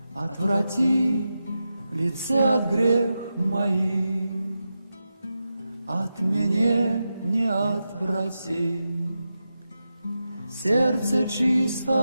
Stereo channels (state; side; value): inverted; both; correlation -0.90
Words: Отврати лице от грех моих, от меня не отврати. Сердце